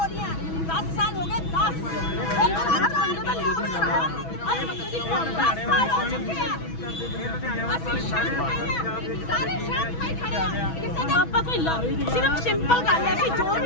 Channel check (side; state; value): right; late; 6.1 ms